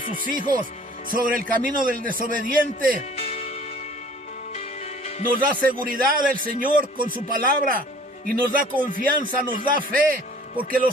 sus hijos, sobre el camino del desobediente. Nos da seguridad el Señor con su palabra y nos da confianza, nos da fe, porque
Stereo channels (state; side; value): normal; both; correlation 0.51